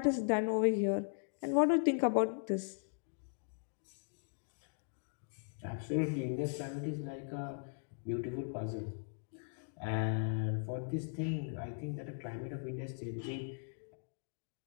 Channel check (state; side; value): silent; right; digital silence